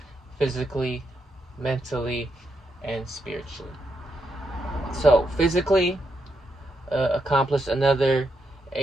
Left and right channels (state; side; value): normal; both; correlation 0.82